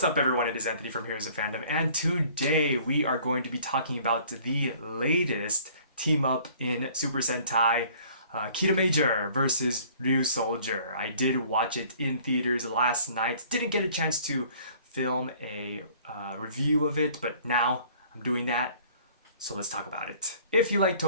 up everyone, it is Anthony from Heroes of Fandom, and today we are going to be talking about the latest team up in Super Sentai, Kiramager versus Ryusoulger. I did watch it in theaters last night, didn't get a chance to film a review of it, but now I'm doing that, so let's talk about it. If you like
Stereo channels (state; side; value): inverted; both; correlation -0.54